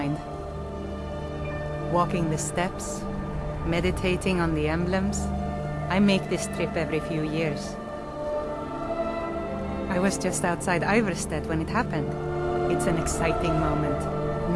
Walking the steps, meditating on the emblems. I make this trip every few years. I was just outside Ivarstead when it happened. It's an exciting moment.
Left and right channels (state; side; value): identical; both; correlation 1.00